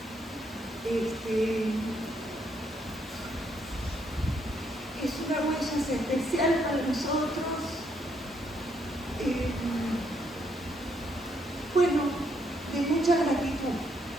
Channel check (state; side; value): normal; both; correlation 0.73